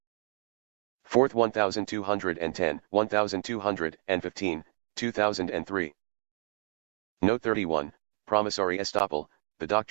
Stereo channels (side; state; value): left; silent; digital silence